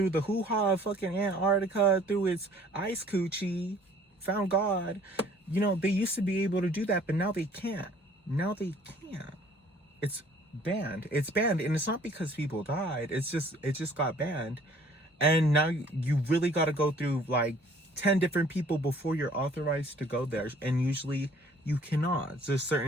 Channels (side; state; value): both; normal; correlation 0.55